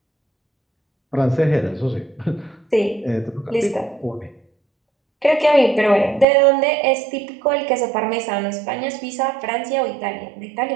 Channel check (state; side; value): drops out; left; at 6.2 s